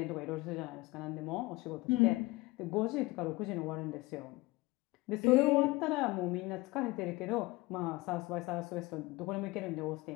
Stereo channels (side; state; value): right; quieter; 21.8 dB